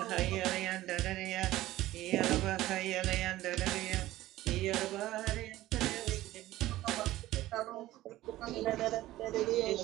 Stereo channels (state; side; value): quieter; left; 15.9 dB